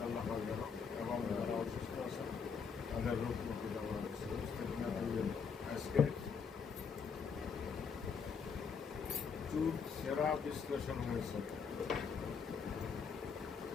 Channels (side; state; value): right; quieter; 6.0 dB